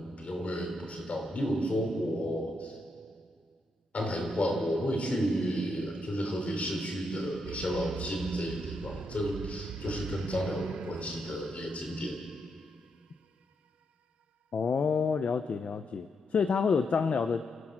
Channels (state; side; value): normal; both; correlation 0.81